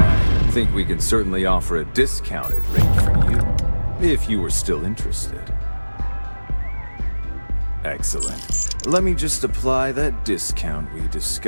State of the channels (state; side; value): inverted; both; correlation -1.00